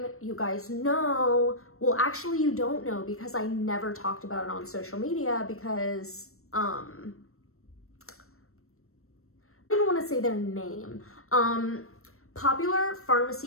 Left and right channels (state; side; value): late; right; 0.63 ms